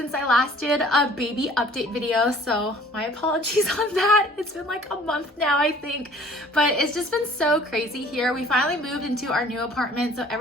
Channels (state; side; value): normal; both; correlation 0.53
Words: I last did a baby update video, so my apologies on that. It's been like a month now, I think, but it's just been so crazy here. We finally moved into our new apartment, so